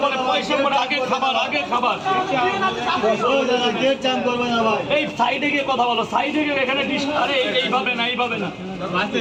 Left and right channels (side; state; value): both; identical; correlation 1.00